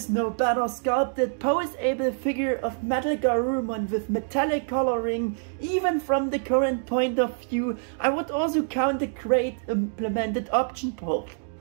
no better sculpted poseable figure of MetalGarurumon with metallic coloring. Even from the current point of view, I would also count the great implemented option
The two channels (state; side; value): silent; left; 61 dB below the other